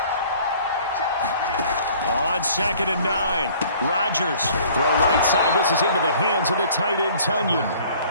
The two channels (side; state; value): both; inverted; correlation -0.53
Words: On 2nd and 9, Rodgers. Throw right side. This is into the hands of the tight end, Tunyon.